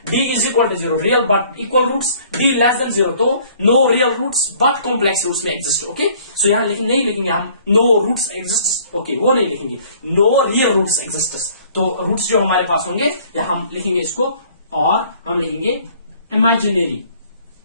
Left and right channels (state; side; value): inverted; both; correlation -0.56